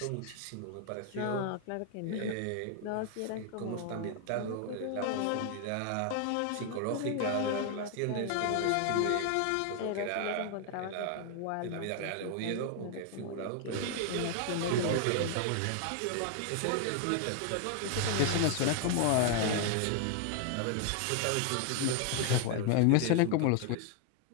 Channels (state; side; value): different; both; correlation 0.00